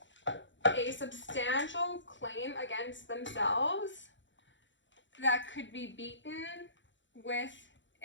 a substantial claim against themselves that could be beaten with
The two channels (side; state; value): right; late; 0.54 ms